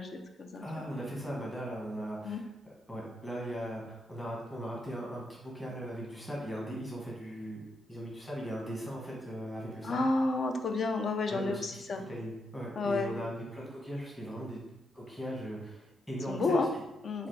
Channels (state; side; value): normal; both; correlation 0.81